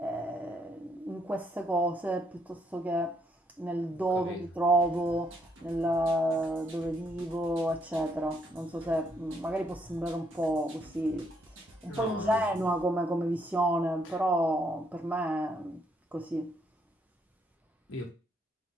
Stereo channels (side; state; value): both; normal; correlation 0.72